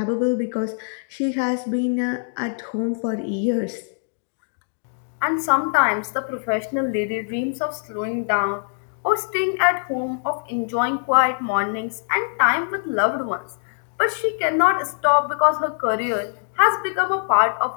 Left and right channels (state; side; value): silent; right; digital silence